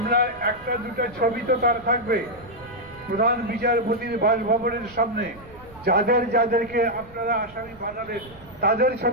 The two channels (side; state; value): right; noise; rumble, 22 dB below the sound